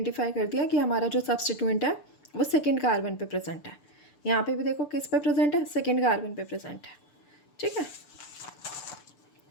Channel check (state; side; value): late; right; 6.8 ms